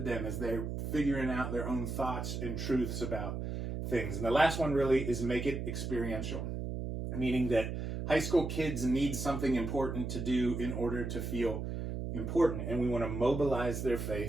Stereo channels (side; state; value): right; noise; hum, 4 dB below the sound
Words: them as they're figuring out their own thoughts and truths about things. And the last one really is make it experiential, meaning that high school kids need something important to do in order to feel important. And we want to mobilize their